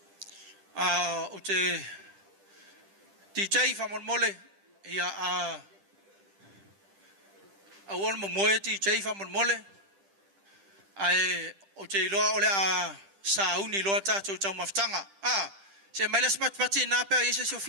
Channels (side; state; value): left; late; 10 ms